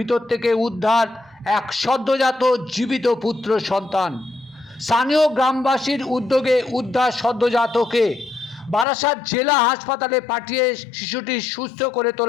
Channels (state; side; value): drops out; right; at 8.8 s